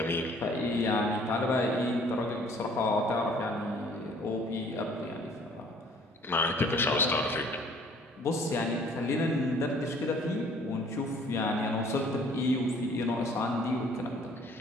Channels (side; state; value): both; normal; correlation 0.56